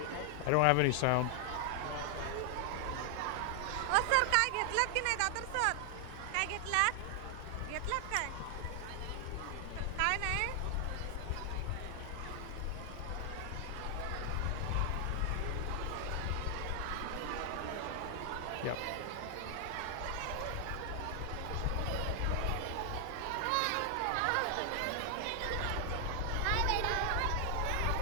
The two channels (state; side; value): different; both; correlation 0.00